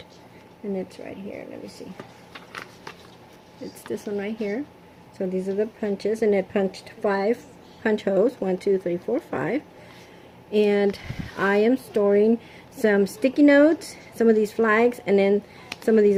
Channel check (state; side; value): identical; both; correlation 1.00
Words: and it's right here. Let me see. It's this one right here. So these are the punches, and it punched 5 punch holes, 1 2 3 4 5. And I am storing some sticky notes, some of these flags, and then some of these